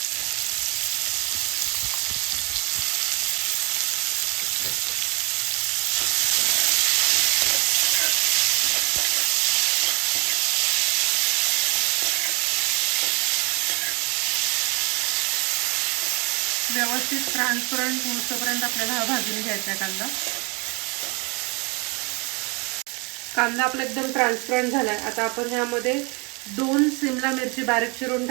व्यवस्थित ट्रान्सपरंट होईपर्यंत आपल्याला हा भाजून घ्यायचा कांदा. कांदा आपला एकदम ट्रान्सपरंट झालाय. आता आपण ह्यामध्ये 2 शिमला मिरची बारीक चिरून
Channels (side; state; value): left; quieter; 30.0 dB